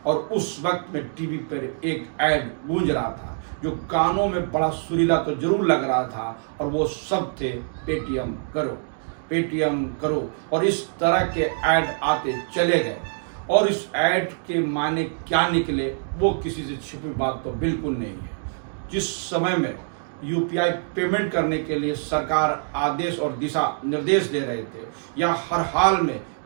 और उस वक्त में टीवी पर एक ऐड गूंज रहा था जो कानों में बड़ा सुरीला तो जरूर लग रहा था, और वो सब थे पेटीएम करो, पेटीएम करो। और इस तरह के ऐड आते चले गए, और इस ऐड के माने क्या निकले वो किसी से छिपी बात तो बिल्कुल नहीं है। जिस समय में यूपीआई पेमेंट करने के लिए सरकार आदेश और दिशा निर्देश दे रहे थे, या हर हाल में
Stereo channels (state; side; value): silent; left; digital silence